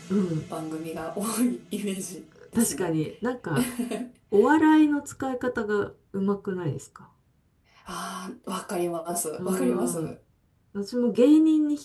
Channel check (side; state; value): both; identical; correlation 1.00